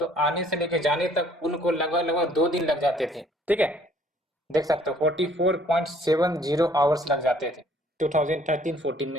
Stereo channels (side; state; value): both; normal; correlation 0.60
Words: आने से लेकर जाने तक उनको लगभग लगभग 2 दिन लग जाते थे, ठीक है। देख सकते हो 44.70 आवर्स लग जाते थे 2013-14